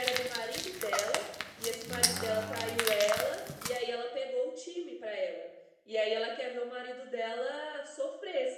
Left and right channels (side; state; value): both; identical; correlation 1.00